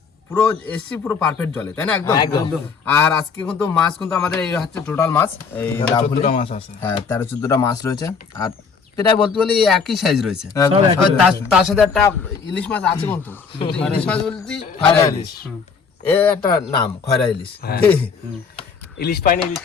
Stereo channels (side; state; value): right; quieter; 5.6 dB